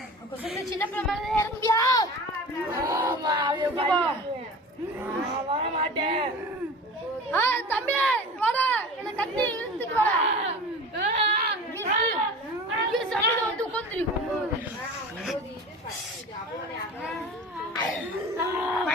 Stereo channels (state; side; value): normal; both; correlation 0.36